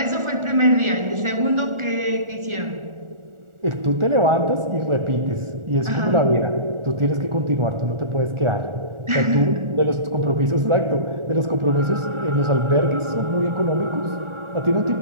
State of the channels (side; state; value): left; late; 1.4 ms